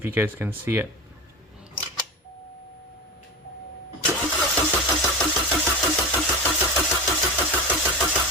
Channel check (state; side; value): normal; both; correlation 0.25